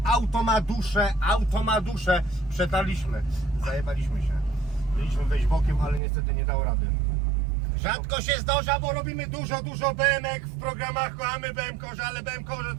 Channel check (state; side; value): drops out; left; at 6.0 s